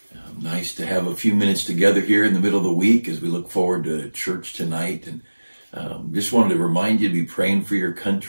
Nice to have a few minutes together here in the middle of the week as we look forward to church tonight. And just wanted to remind you to be praying for your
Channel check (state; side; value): inverted; both; correlation -1.00